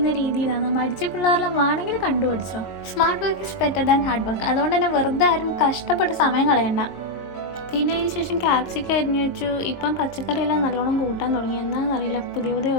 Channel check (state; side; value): late; right; 22 ms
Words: രീതിയിലാണ്. മടിച്ച പിള്ളേരെല്ലാം വേണമെങ്കിൽ കണ്ടുപിടിച്ചോ. Smart work is better than hard work. അതുകൊണ്ട് തന്നെ വെറുതെ ആരും കഷ്ടപ്പെട്ട് സമയം കളയണ്ട. പിന്നെ അതിന് ശേഷം ക്യാപ്സിക്കം അരിഞ്ഞു വെച്ചു. ഇപ്പം പച്ചക്കറിയെല്ലാം നല്ലോണം കൂട്ടാൻ തുടങ്ങി. എന്താണെന്നറിയില്ല, പുതിയ